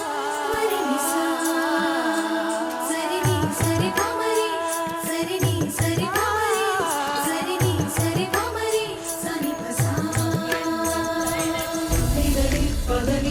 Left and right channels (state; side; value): identical; both; correlation 1.00